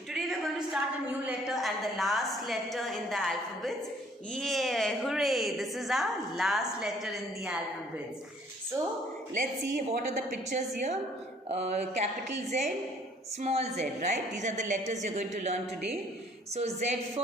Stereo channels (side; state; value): both; normal; correlation 0.59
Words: Today we are going to start a new letter and the last letter in the alphabets. Yeah, hooray! This is our last letter in the alphabets. So let's see what are the pictures here. Capital Z, small z, right? These are the letters you are going to learn today. So Z